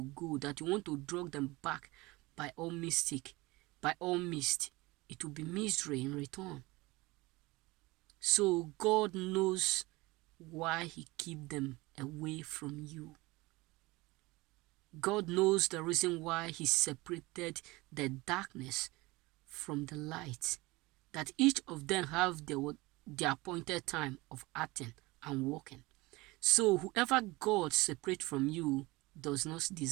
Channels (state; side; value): quieter; left; 22.0 dB